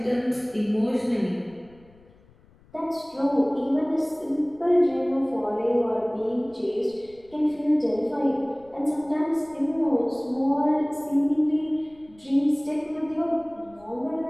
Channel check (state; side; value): noise; left; rumble, 28 dB below the sound